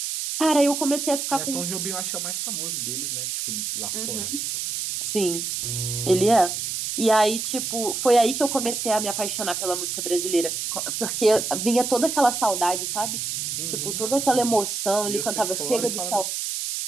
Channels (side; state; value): right; noise; hiss, 3 dB below the sound